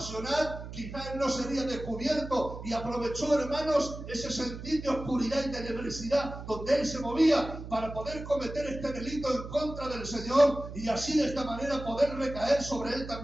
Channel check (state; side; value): noise; right; hum, 10 dB below the sound